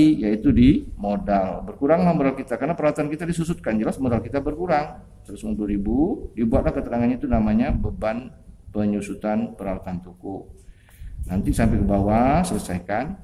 Yaitu di modal. Berkuranglah modal kita karena peralatan kita disusutkan, jelas modal kita berkurang 150.000. Dibuatlah keterangannya, itu namanya beban penyusutan peralatan toko. Nanti sampai ke bawah selesaikan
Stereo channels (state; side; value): identical; both; correlation 1.00